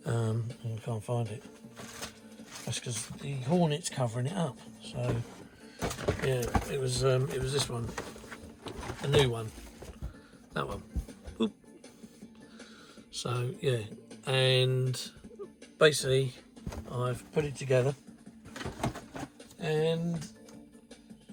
I can't find it. That's because the Hornet's covering it up. So yeah, it was this one. A new one, that one. Oop. So yeah, and basically I've put it together and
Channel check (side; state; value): both; identical; correlation 1.00